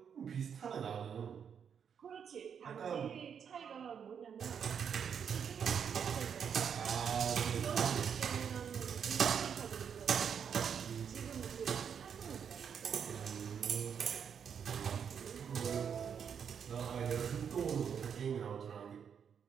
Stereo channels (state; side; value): quieter; left; 7.5 dB